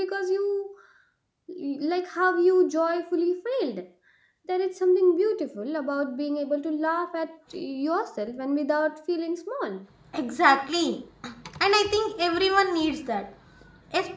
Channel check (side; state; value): both; identical; correlation 1.00